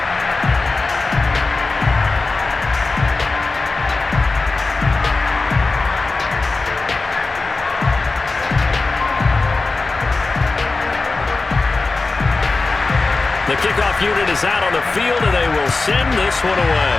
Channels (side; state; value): right; quieter; 3.7 dB